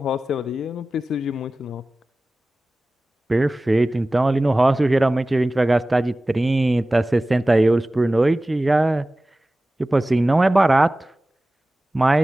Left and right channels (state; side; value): normal; both; correlation 0.97